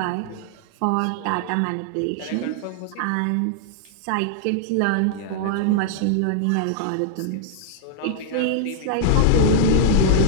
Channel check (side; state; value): both; different; correlation -0.01